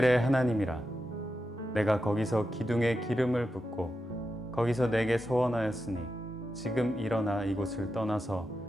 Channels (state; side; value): normal; both; correlation 0.88